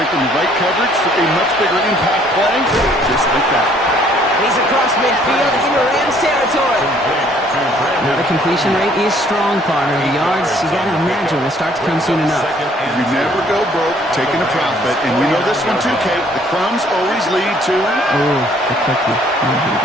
the right coverage for a much bigger impact play, just like that. He's across midfield into Rams territory. Now the completion rate is strong, partner. The yards, you got to imagine, will start to come soon enough. You never go broke taking a profit, and we know this one too, Kate. The crumbs always lead to... Oh, the cookie. I'm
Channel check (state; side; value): normal; both; correlation 0.61